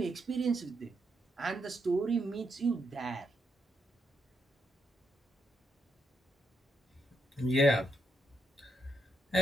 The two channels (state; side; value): normal; both; correlation 0.80